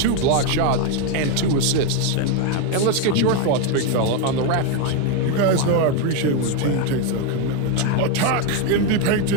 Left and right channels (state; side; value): different; both; correlation 0.02